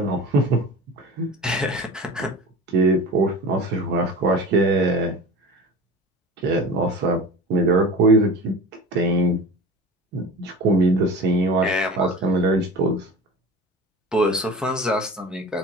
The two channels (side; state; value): both; normal; correlation 0.35